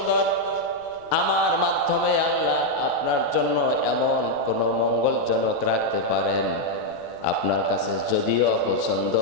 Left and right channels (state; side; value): noise; right; rumble, 28 dB below the sound